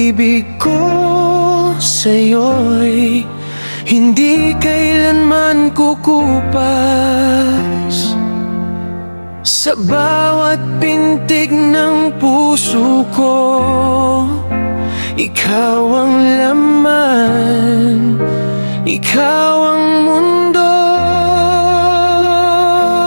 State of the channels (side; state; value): both; inverted; correlation -1.00